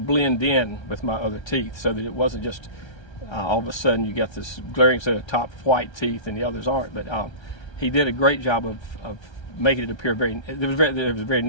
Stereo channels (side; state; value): right; late; 1.3 ms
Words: in with my other teeth, so that it wasn't just all of a sudden you got this glaring set of top white teeth and the others aren't. But he did a great job of making it appear there was a very